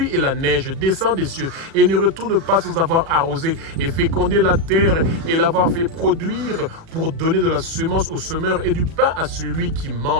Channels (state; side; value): late; left; 36 ms